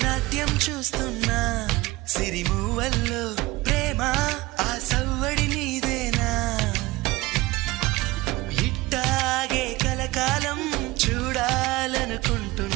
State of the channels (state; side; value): quieter; left; 20.4 dB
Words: చూస్తున్నా సిరిమూవల్లో ప్రేమ ఆ సవ్వడి నీదేనా ఇట్టాగే కలకాలం